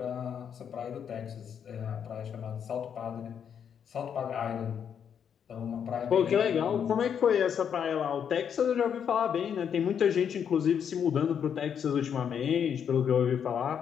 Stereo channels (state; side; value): quieter; right; 8.0 dB